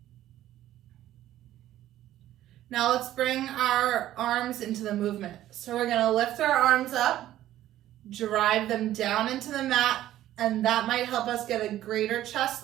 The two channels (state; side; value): quieter; left; 13.3 dB